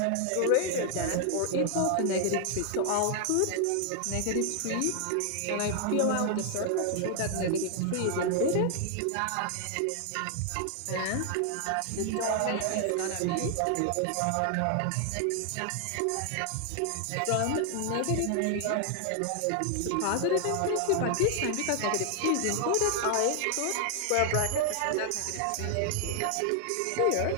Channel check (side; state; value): both; different; correlation 0.00